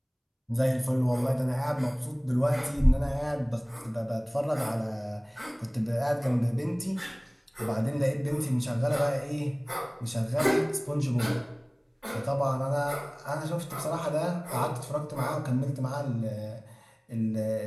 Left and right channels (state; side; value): identical; both; correlation 1.00